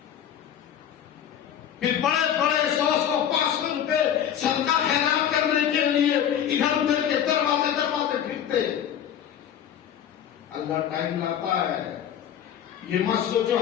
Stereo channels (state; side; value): quieter; right; 9.6 dB